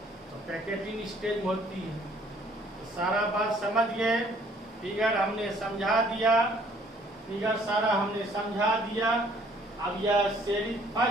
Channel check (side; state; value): both; normal; correlation 0.60